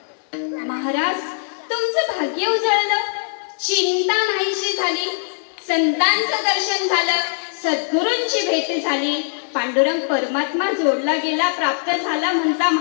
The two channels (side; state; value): right; silent; digital silence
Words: महाराज तुमचं भाग्य उजळलं, चिंता नाहीशी झाली, संतांचं दर्शन झालं, सद्गुरूंची भेट झाली, पांडुरंग परमात्मा जोडला गेला, प्राप्त झाला म्हणता